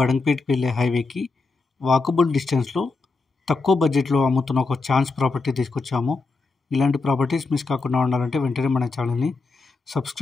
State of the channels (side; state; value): right; quieter; 3.9 dB